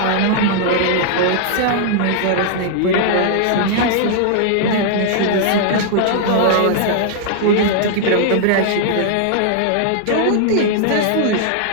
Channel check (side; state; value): both; different; correlation -0.01